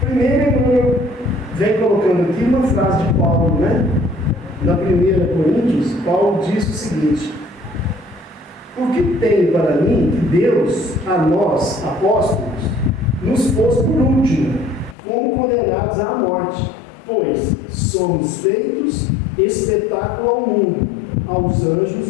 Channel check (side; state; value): right; drops out; at 15.0 s